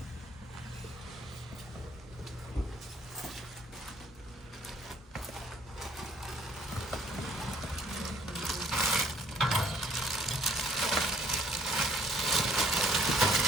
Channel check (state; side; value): normal; both; correlation 0.60